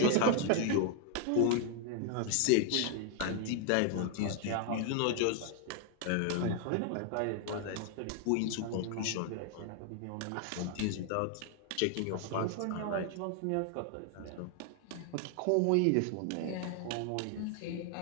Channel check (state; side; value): different; both; correlation 0.00